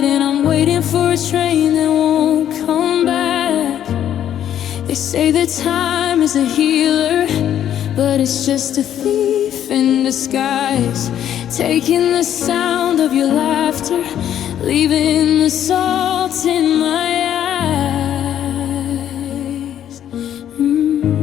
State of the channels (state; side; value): quieter; right; 10.5 dB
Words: and I'm waiting for a train that won't come back. They say that time is a healer, but it's just a thief in disguise, taking the sound of your laughter, leaving the salt in my eyes.